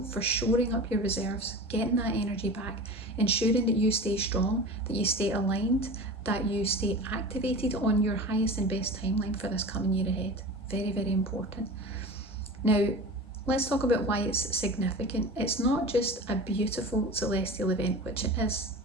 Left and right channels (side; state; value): both; normal; correlation 0.33